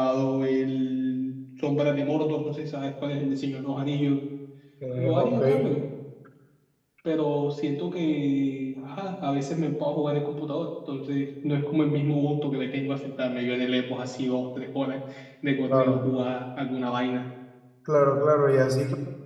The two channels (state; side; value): identical; both; correlation 1.00